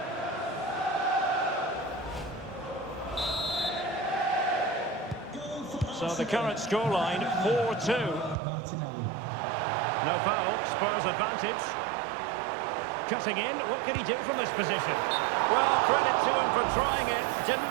So the current scoreline, 4-2. Martinelli. No foul, Spurs advantage. Cutting in, what can he do from this position? Well, credit to him for trying it.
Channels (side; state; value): left; drops out; at 8.3 s